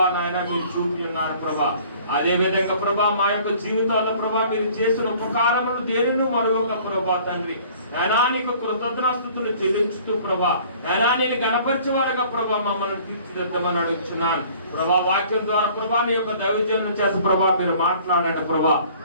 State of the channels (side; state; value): both; inverted; correlation -0.53